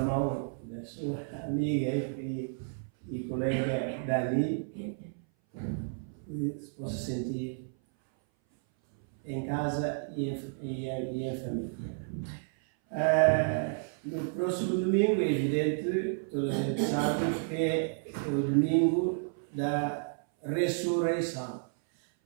mão da sua amiga e colega Dani, que se possa sentir em casa e em família. No próximo domingo, é evidente, toda a gente sabe que é o domingo da ressurreição.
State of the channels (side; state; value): left; silent; 57 dB below the other